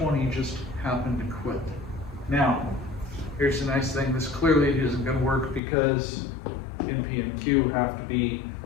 just happened to quit. Now, here's the nice thing. This clearly isn't going to work because NP and Q have to be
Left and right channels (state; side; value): drops out; right; at 5.6 s